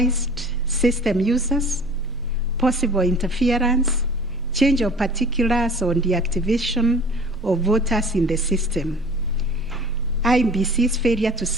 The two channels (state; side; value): normal; both; correlation 0.45